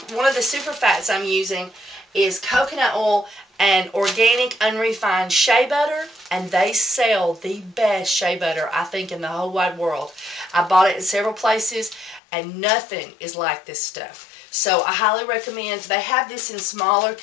one of the super fats I'm using is coconut oil and organic unrefined shea butter, and they sell the best shea butter, I think, in the whole wide world. I bought it in several places, and nothing is like this stuff. So I highly recommend. They have this in smaller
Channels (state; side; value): drops out; right; at 12.2 s